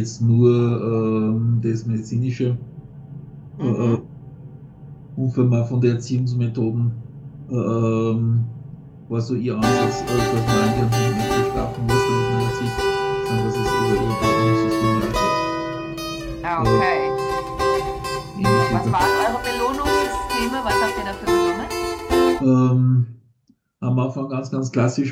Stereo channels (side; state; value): both; identical; correlation 1.00